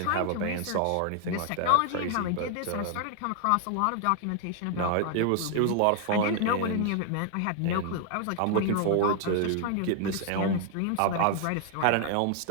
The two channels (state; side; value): different; both; correlation 0.00